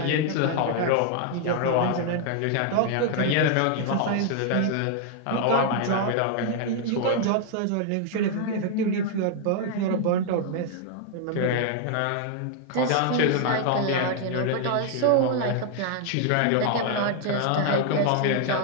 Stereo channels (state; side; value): different; both; correlation 0.00